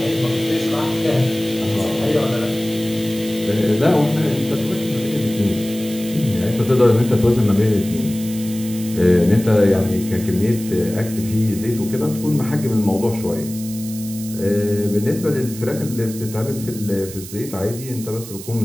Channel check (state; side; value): noise; right; hiss, 13 dB below the sound